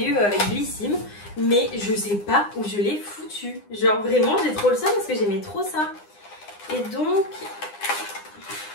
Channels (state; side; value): late; right; 9.8 ms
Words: eu avec Blissim mais je sais pas où je l'ai foutu. Genre vraiment j'ai trop le seum parce que j'aimais trop ça. Et donc